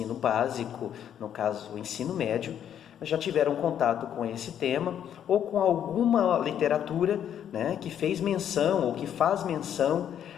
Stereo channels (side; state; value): right; quieter; 9.6 dB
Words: básico, no caso o ensino médio, já tiveram contato com esse tema ou com alguma literatura, que fez menção ou que faz menção